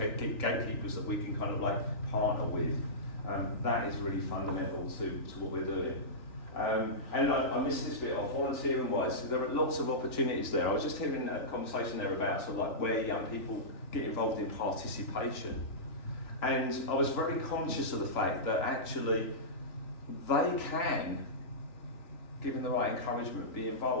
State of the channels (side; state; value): right; late; 3.4 ms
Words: that we can partner with. That is really fundamental to what we're doing. And I missed this bit off, volunteering-wise, there are lots of opportunities there. I was just hearing a conversation there about where young people get involved in participation. And I was very conscious of the fact that actually they can, given the right encouragement, be